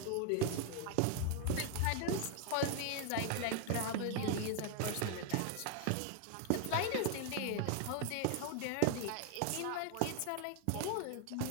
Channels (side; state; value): both; different; correlation 0.00